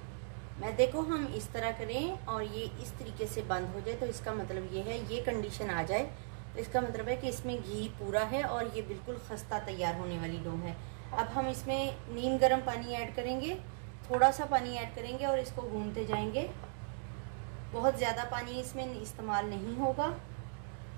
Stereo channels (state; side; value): silent; left; digital silence